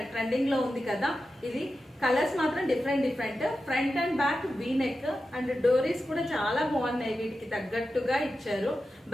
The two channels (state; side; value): normal; both; correlation 0.91